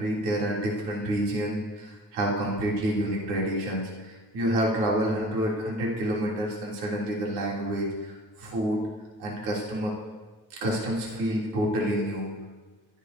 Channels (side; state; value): left; late; 9.2 ms